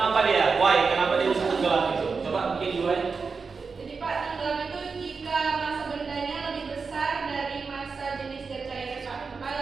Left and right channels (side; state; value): left; quieter; 4.9 dB